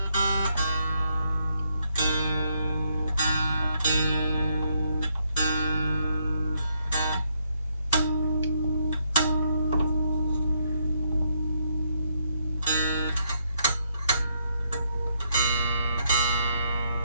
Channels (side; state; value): both; inverted; correlation -0.75